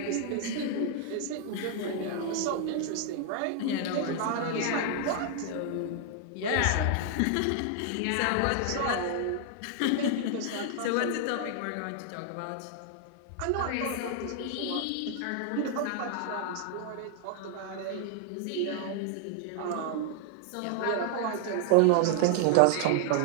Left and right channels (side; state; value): both; different; correlation 0.00